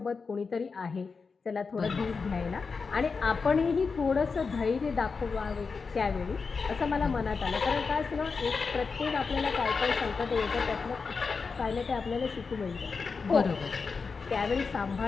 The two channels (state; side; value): quieter; right; 4.9 dB